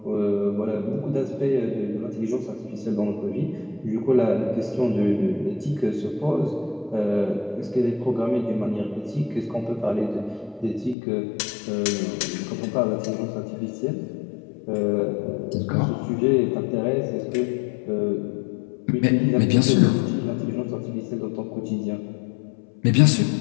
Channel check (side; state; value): right; drops out; at 11.0 s